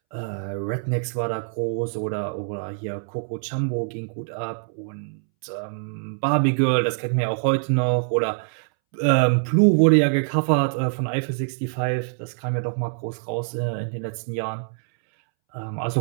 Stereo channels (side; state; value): left; silent; 62 dB below the other